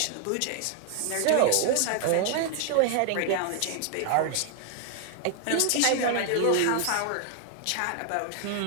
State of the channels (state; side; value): different; both; correlation 0.00